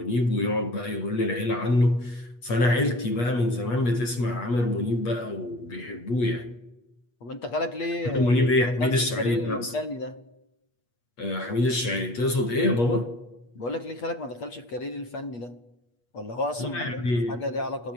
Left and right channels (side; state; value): right; late; 8.4 ms